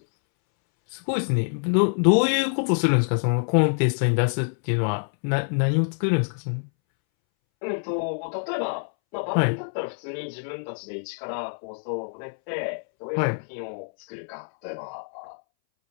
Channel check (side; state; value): right; silent; 61 dB below the other